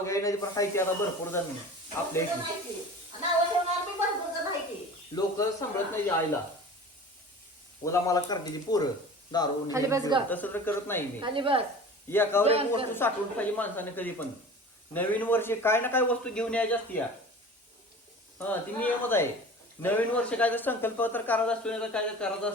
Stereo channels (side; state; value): both; normal; correlation 0.39